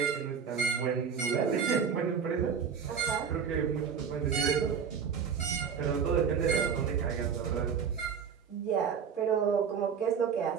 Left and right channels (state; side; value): quieter; left; 6.8 dB